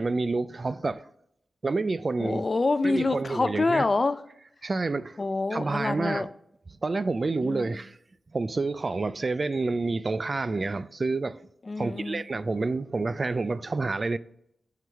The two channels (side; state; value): both; normal; correlation 0.94